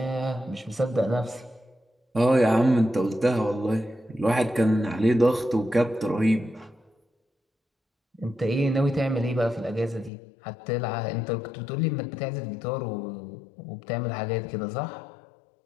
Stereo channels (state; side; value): drops out; right; at 10.1 s